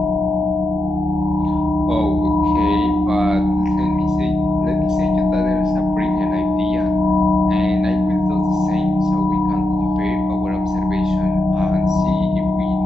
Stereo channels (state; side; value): normal; both; correlation 0.87